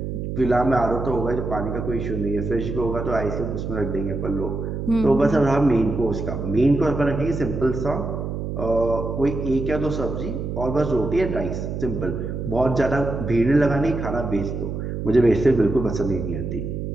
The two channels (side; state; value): right; noise; hum, 4 dB below the sound